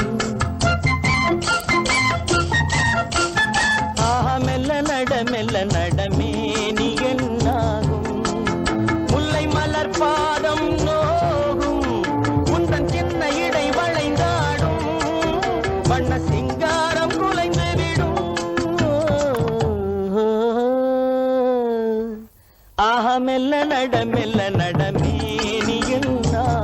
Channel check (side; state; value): both; identical; correlation 1.00